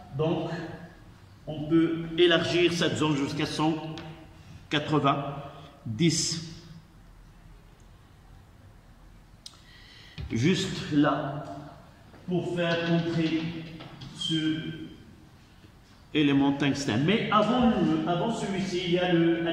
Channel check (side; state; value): both; identical; correlation 1.00